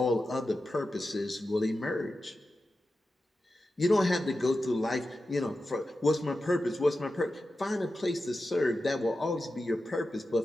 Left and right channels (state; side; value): normal; both; correlation 0.92